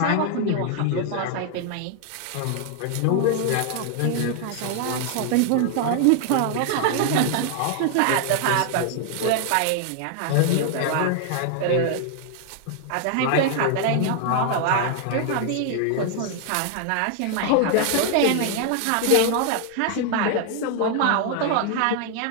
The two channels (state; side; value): different; both; correlation 0.00